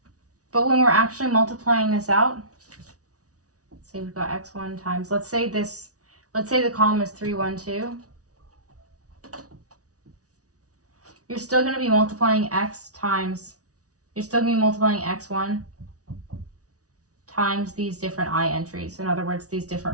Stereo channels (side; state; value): left; late; 0.67 ms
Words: but when we're actually multiplying this out, say we've got x1 times, let's say the column is 3, 1, 2. You're still going to be multiplying x1 times these different I entries. In other words, these